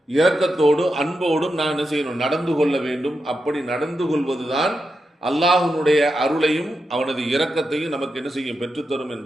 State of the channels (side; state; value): both; normal; correlation 0.88